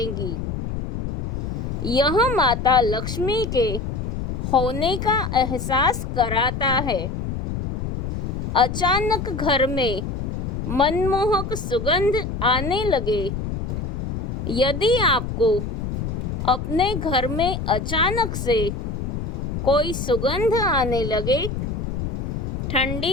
यह माता लक्ष्मी के होने का एहसास कराता है। अचानक घर में मनमोहक सुगंध आने लगे। यदि आपको अपने घर में अचानक से कोई सुगंध आने लगे,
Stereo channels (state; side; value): noise; left; rumble, 4 dB below the sound